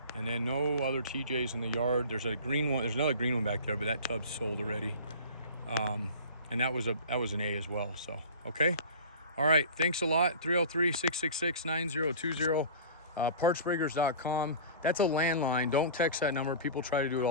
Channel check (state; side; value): inverted; both; correlation -0.38